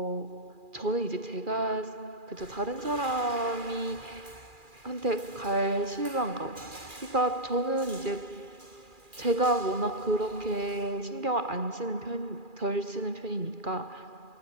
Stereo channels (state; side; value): late; left; 2.4 ms